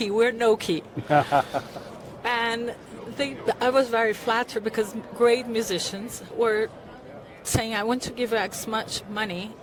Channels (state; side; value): identical; both; correlation 1.00